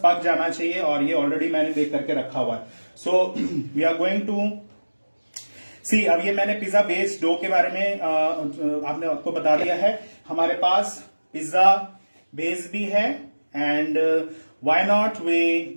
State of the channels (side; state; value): both; inverted; correlation -1.00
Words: पक जाना चाहिए, और ये ऑलरेडी मैंने बेक करके रखा हुआ है। So we are going to see, अब ये मैंने पिज्जा बेस डो के बारे में आपने आपको बता दिया है। हमारे पास पिज्जा बेस भी है, and why not